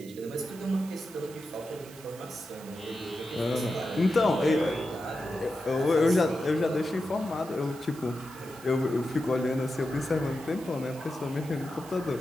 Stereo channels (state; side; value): noise; right; hiss, 20 dB below the sound